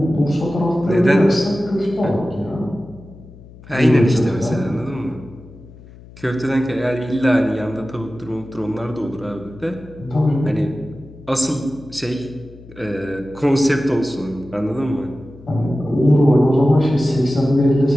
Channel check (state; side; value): noise; left; hum, 20 dB below the sound